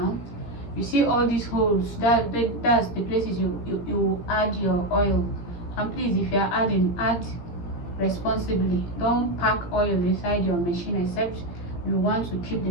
you see all these holes, that's the places you add your oil. And please, if you are adding, add responsibly. Don't pack oil inside your machine except you want to keep the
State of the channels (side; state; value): right; late; 17 ms